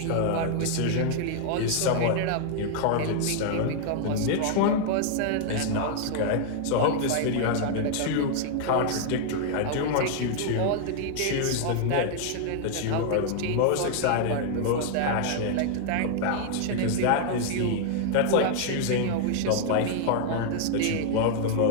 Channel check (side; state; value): both; different; correlation 0.00